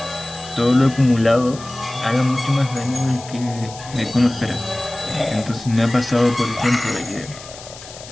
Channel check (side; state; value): left; noise; hiss, 16 dB below the sound